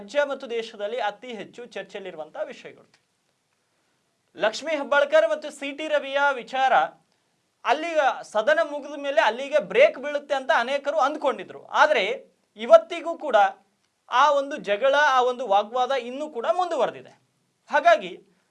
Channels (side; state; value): both; identical; correlation 1.00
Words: ಮತ್ತು ದೇಶದಲ್ಲಿ ಅತಿ ಹೆಚ್ಚು ಚರ್ಚೆಯಲ್ಲಿರುವಂತಹ ವಿಷಯಗಳು. ಲಕ್ಷ್ಮೀ ಹೆಬ್ಬಾಳ್ಕರ್ ಮತ್ತು ಸಿ.ಟಿ. ರವಿಯ ವಿಚಾರ ಅಲ್ಲಿಗೆ ಸದನ ಮುಗಿದ ಮೇಲೆ ಅಲ್ಲಿಗೆ ಬ್ರೇಕ್ ಬೀಳುತ್ತೆ ಅಂತ ಅನೇಕರು ಅಂದ್ಕೊಂಡಿದ್ರು. ಆದರೆ ಇವತ್ತಿಗೂ ಕೂಡ ಆ ಒಂದು ಜಗಳ, ಆ ಒಂದು ವಾಗ್ವಾದ ಇನ್ನೂ ಕೂಡ ಮುಂದುವರೆದಿದೆ. ಹಾಗಾಗಿ